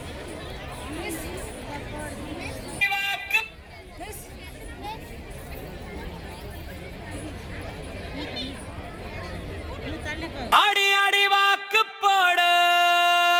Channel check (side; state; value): both; identical; correlation 1.00